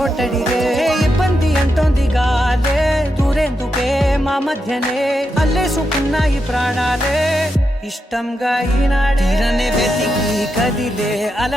ఇబ్బంది అంటోంది గాలే దూరేందుకే మా మధ్యనే అల్లేసుకున్నాయి ప్రాణాలే ఇష్టంగా ఈనాడే వెతికి కదిలే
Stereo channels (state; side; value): normal; both; correlation 0.85